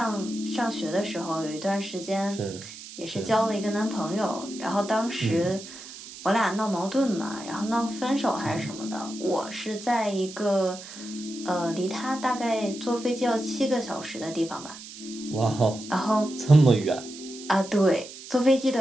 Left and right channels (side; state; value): right; noise; hiss, 14 dB below the sound